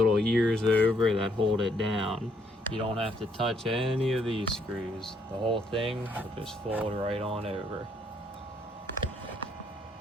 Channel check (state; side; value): normal; both; correlation 0.70